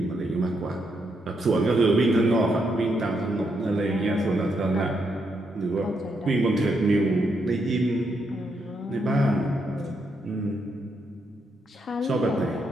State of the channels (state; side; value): normal; both; correlation 0.79